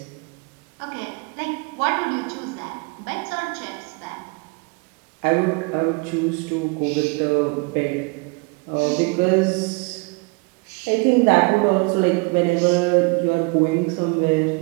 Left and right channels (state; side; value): quieter; left; 30.1 dB